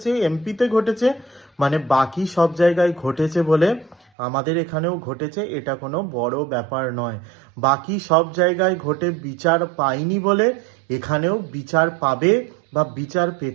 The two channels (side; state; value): left; drops out; at 4.0 s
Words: এমপিতে ঘটেছে, মানে বাকি সব জায়গায় ঘটেছে বলে আমাদের এখানেও ঘটেছে, এটা কোনো বড় ব্যাপার নয়। বাকি সব জায়গায় ঘটে বিচার পায়নি বলে এখানেও বিচার পাবে বা বিচার